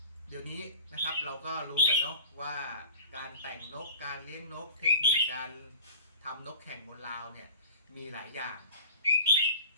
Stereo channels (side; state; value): both; inverted; correlation -0.40